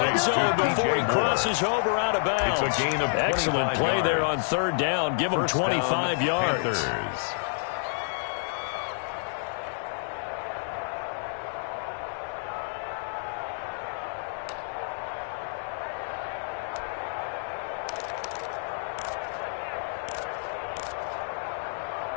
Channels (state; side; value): silent; right; digital silence